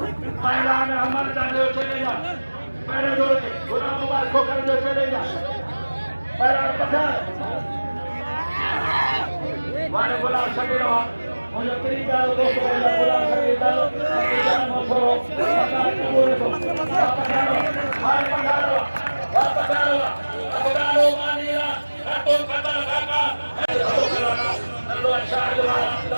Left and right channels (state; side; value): inverted; both; correlation -1.00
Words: पहलवान हमारे जाने चले जा, पहले दो गुलाम मुबारक को कर दो चले जा, पहला पठान, वाले गुलाम शकील मुझे तेरी दाल दोस्तों वाला गुलाम शकील दाल, जान मशहूर, पठान बोले तो, पठान मानीला, तो कता काका, नल्लो शाह वाला,